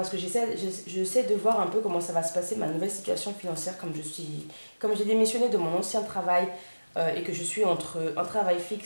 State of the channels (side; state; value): both; inverted; correlation -1.00